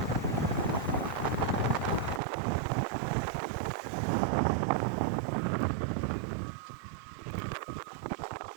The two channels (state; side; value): drops out; left; at 2.2 s